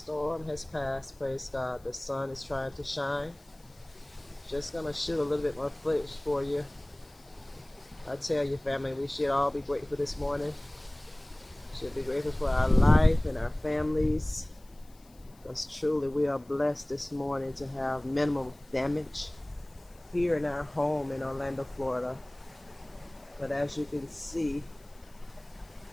has passed. Praise God. The sun is trying to shine. Just gonna shoot a little bit more footage for you. I tell you, family, we should all be grateful this morning. Should be grateful for our life and our families. Because truly we are blessed this morning to have minimal damage here in our home in Orlando, Florida. But as you can see,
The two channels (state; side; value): noise; left; hiss, 29 dB below the sound